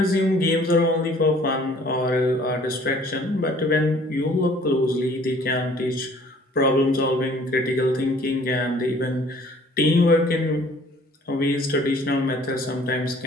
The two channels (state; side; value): normal; both; correlation 0.54